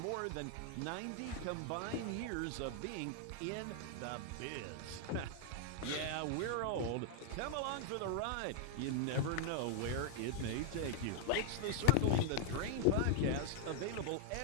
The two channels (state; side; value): different; both; correlation -0.01